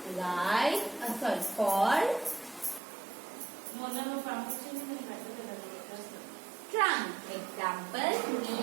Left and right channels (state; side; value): drops out; left; at 2.8 s